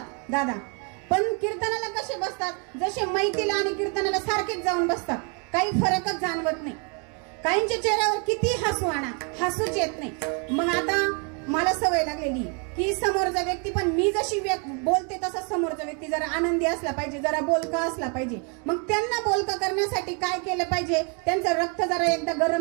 दादा, पण कीर्तनाला कसे बसतात? जसे मैतीला आणि कीर्तनाला सारखेच जाऊन बसतात. काही फरकच जाणवत नाही. काहींच्या चेहऱ्यावर किती हसू आणा, हसूच येत नाही. मग आता मला सवय लागलेली की समोरचा व्यक्ती पण मी जशी बोलते तसा समोरचा व्यक्ती जरा आनंदी असला पाहिजे, जरा बोलका असला पाहिजे. मग त्यांना बोलका करण्यासाठी काय केलं पाहिजे? त्यांचं रक्त जरा एकदा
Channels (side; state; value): left; quieter; 36.6 dB